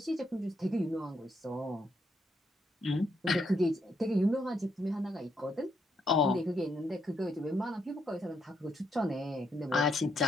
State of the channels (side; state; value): both; normal; correlation 0.77